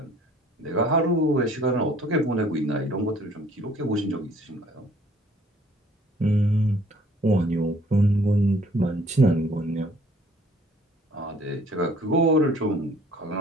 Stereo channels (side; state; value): both; normal; correlation 0.57